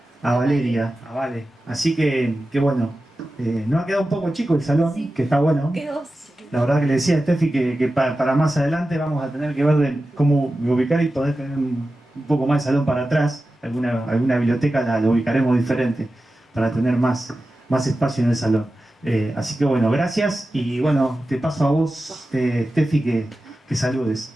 Valeria, a Vale. Así que bueno, nos ha quedado un poco chico el salón, Sí. que está bueno. Quedó. La verdad que le decía a Steffi que para más adelante vamos a tener que ver cómo ubicar y poder tener un poco más de salón para atrás. Alguna biblioteca la ubicaremos diferente para tener más espacio en el salón. Así que bueno, gracias y bueno, te paso a vos, Steffi, que saludes.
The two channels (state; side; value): normal; both; correlation 0.93